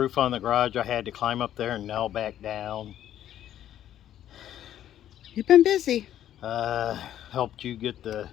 on the garage I had to climb up there and nail back down. You've been busy. Helped you get the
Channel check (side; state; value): right; quieter; 11.5 dB